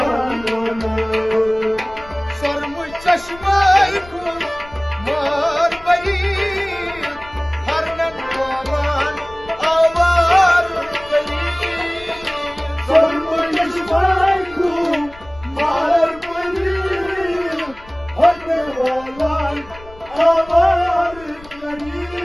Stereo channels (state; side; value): noise; left; rumble, 20 dB below the sound